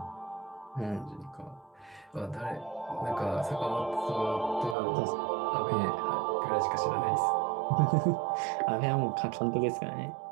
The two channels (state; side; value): drops out; left; at 4.8 s